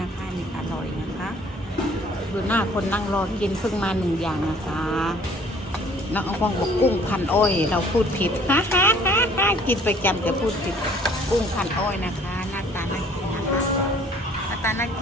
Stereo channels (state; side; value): normal; both; correlation 0.55